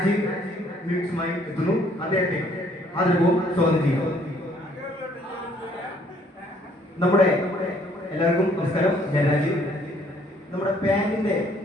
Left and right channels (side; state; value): both; normal; correlation 0.63